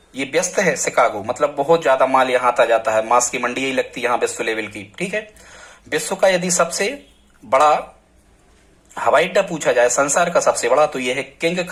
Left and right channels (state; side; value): identical; both; correlation 1.00